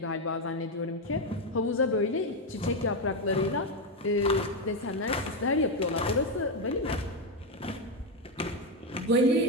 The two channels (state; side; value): normal; both; correlation 0.07